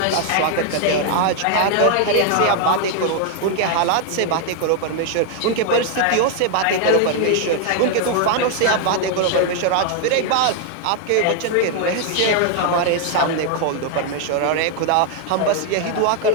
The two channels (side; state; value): both; different; correlation 0.00